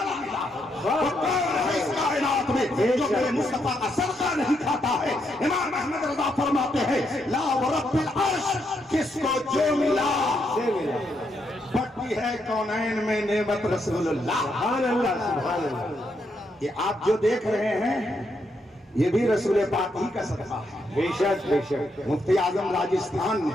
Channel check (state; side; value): normal; both; correlation 0.78